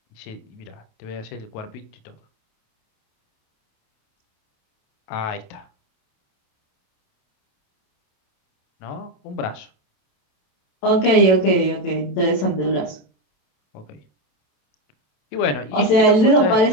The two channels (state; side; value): late; right; 27 ms